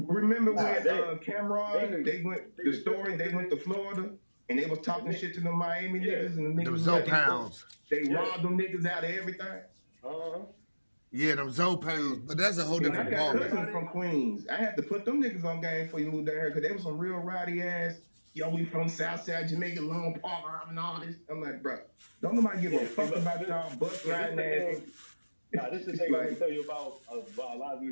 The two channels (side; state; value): both; inverted; correlation -1.00